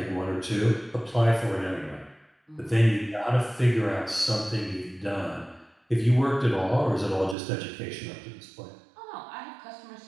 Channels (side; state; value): left; drops out; at 7.4 s